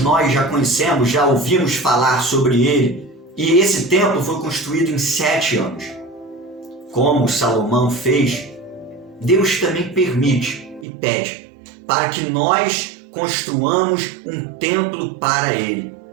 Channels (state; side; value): drops out; left; at 10.9 s